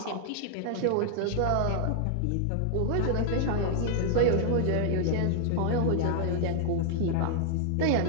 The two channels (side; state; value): both; different; correlation 0.00